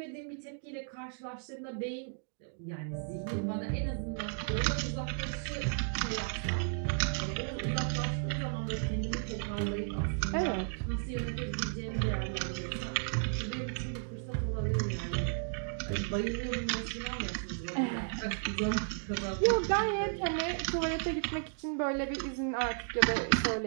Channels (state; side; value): silent; left; digital silence